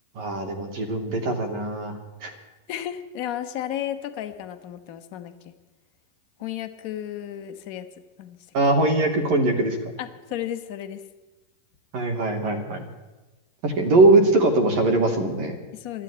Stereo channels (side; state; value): left; late; 11 ms